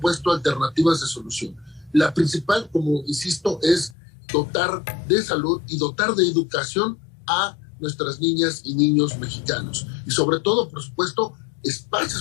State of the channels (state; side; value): drops out; right; at 4.0 s